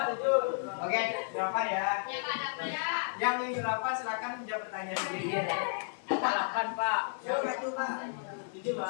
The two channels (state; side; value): silent; right; 56 dB below the other